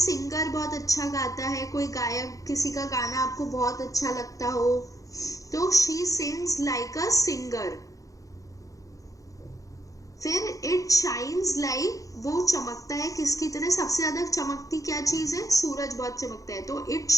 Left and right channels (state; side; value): late; right; 0.16 ms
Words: बहुत अच्छा गाता है, कोई गायक, किसी का गाना आपको बहुत अच्छा लगता हो, तो she sings like a singer. फिर इट शाइन्स लाइक, वो चमकता है किसकी तरह? सबसे ज्यादा चमकती क्या चीज है? सूरज बहुत चमकता है, तो इट